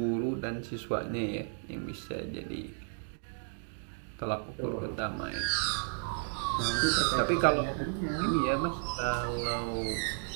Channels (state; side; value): silent; left; 56 dB below the other